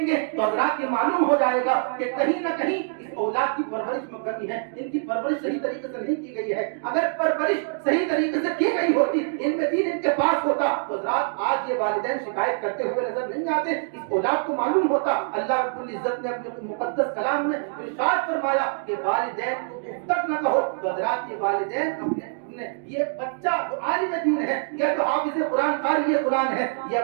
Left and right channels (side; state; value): left; silent; digital silence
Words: گے تو حضرات یہ معلوم ہو جائے گا کہ کہیں نہ کہیں اس اولاد کی پرورش میں کمی ہے، ان کی پرورش صحیح طریقے سے نہیں کی گئی ہے۔ اگر پرورش صحیح طریقے سے کی گئی ہوتی، ان میں دین ان کے پاس ہوتا، تو حضرات آج یہ والدین شکایت کرتے ہوئے نظر نہیں آتے۔ اس اولاد کو معلوم ہوتا، اللہ رب العزت نے اپنے مقدس کلام میں ارشاد فرمایا کہ والدین کو اف تک نہ کہو۔ تو حضرات یہ والدین اپنے یہ بچہ جو عالم دین ہے یا جو حافظ قرآن قاری قرآن ہے، یہ